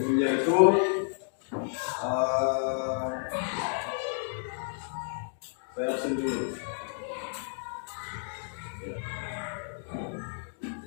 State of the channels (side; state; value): right; silent; digital silence